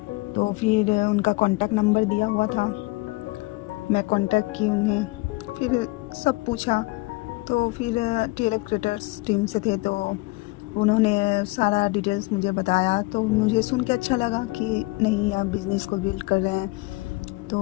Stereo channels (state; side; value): quieter; right; 23.6 dB